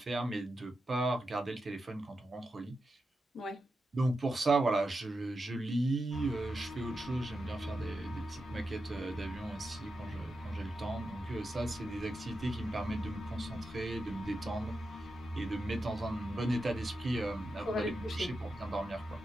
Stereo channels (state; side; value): normal; both; correlation 0.89